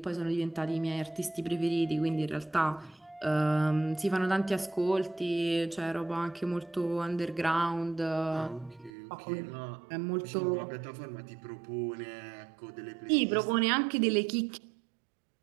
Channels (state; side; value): drops out; left; at 8.9 s